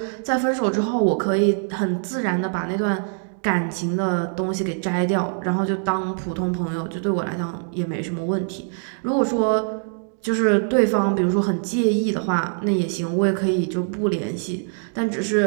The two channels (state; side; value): silent; left; 59 dB below the other